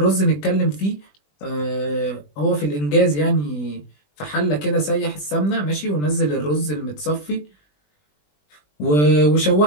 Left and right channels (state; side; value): late; right; 20 ms